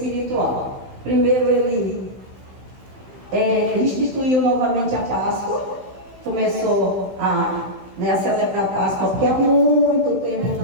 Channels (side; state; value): left; late; 16 ms